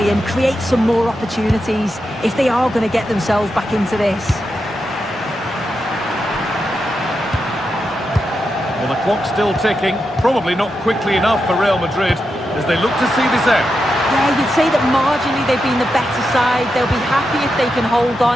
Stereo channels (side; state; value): both; normal; correlation 0.87